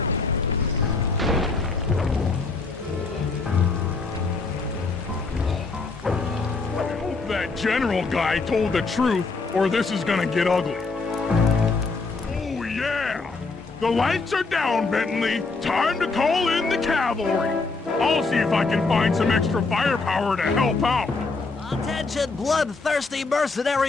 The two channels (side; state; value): right; quieter; 4.0 dB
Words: I hope that general guy told the truth, or this is gonna get ugly. Oh yeah! The lights are down, Bentley. Time to call in the cavalry. I'll see if I can find some extra firepower to help out. Attention, bloodthirsty